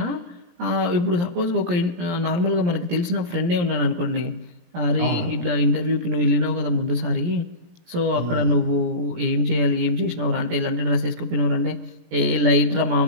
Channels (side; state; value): left; late; 17 ms